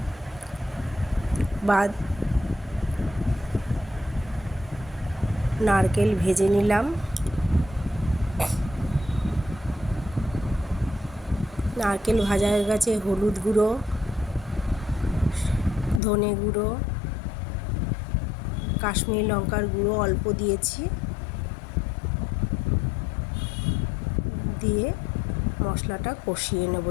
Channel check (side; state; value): right; drops out; at 16.0 s